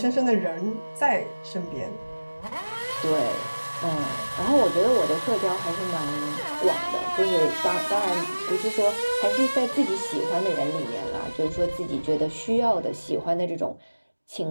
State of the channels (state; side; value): inverted; both; correlation -1.00